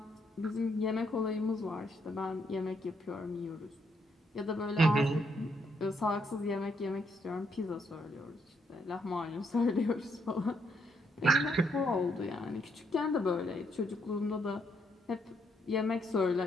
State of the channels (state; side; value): normal; both; correlation 0.74